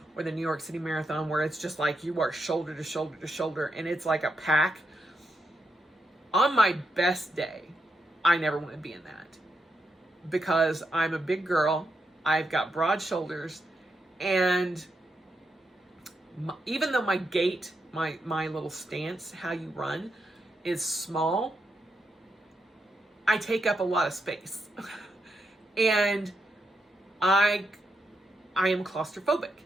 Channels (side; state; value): both; normal; correlation 0.83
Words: or the New York City Marathon, where it's just like you are shoulder to shoulder to shoulder, and it's like a pack. On my best day, I never want to be in that, because I'm a big girl. I've got broad shoulders, and even though my gait, my little stance, how you run, is small, I take up a lot of space. And I am claustrophobic.